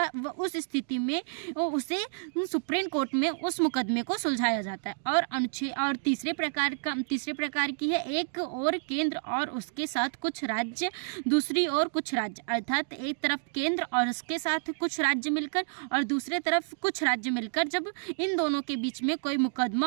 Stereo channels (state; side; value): silent; left; digital silence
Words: उस स्थिति में उसे सुप्रीम कोर्ट में उस मुकदमे को सुलझाया जाता है। और तीसरे प्रकार की है एक और केंद्र और उसके साथ कुछ राज्य, दूसरी ओर कुछ राज्य, अर्थात एक तरफ केंद्र और उसके साथ कुछ राज्य मिलकर और दूसरे तरफ कुछ राज्य मिलकर जब इन दोनों के बीच में कोई